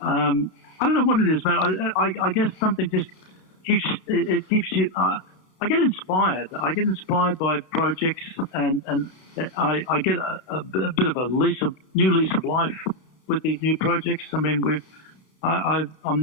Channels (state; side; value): late; right; 31 ms